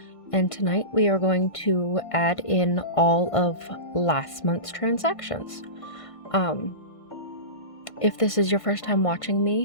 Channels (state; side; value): late; right; 1.5 ms